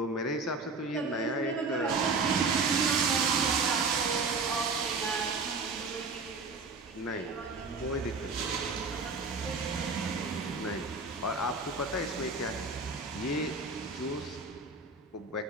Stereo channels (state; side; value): quieter; left; 3.9 dB